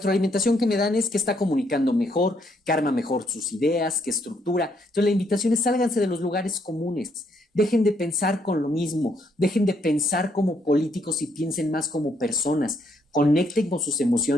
que me dan es que está comunicando mejor, que arma mejor sus ideas, que estructura. Entonces la invitación es: sálganse de los lugares comunes, dejen de pensar con lo mismo, dejen de pensar como políticos y piensen más como personas, conecten con sus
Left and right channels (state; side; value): normal; both; correlation 0.72